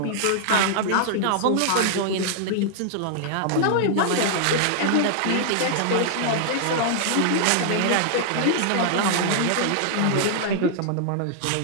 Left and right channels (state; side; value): different; both; correlation -0.01